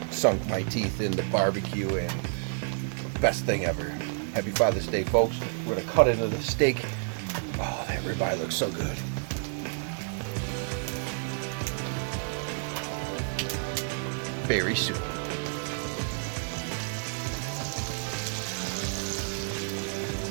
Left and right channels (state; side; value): silent; left; digital silence